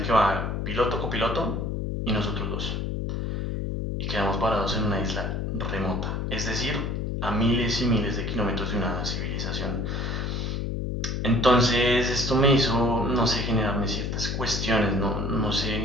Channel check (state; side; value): noise; left; hum, 2 dB below the sound